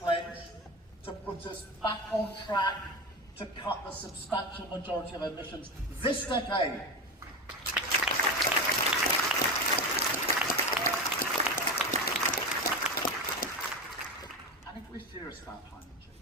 to put us back on track to cut the substantial majority of emissions this decade. And if we're serious about climate change,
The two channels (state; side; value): normal; both; correlation 0.21